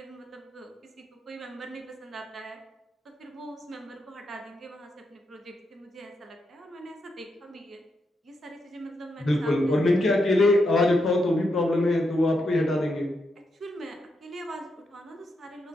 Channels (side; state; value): both; normal; correlation 0.83